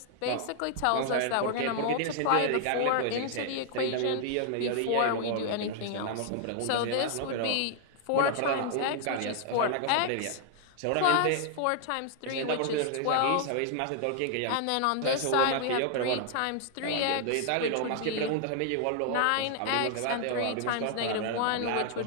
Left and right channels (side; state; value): both; different; correlation 0.00